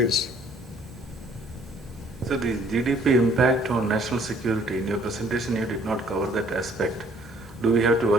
So the GDP impact on national security, in your presentation you did not cover that aspect. Do we have to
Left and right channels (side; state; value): both; normal; correlation 0.59